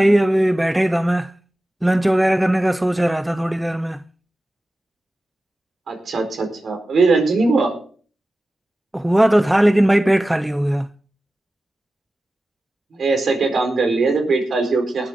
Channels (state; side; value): normal; both; correlation 0.94